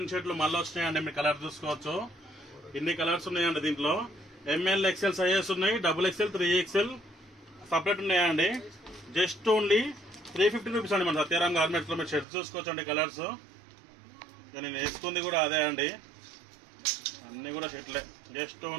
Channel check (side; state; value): left; drops out; at 12.2 s